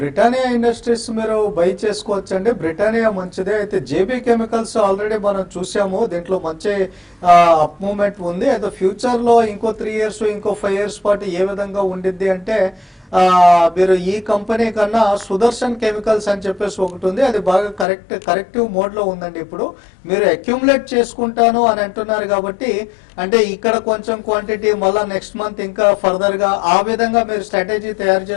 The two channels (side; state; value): right; drops out; at 17.9 s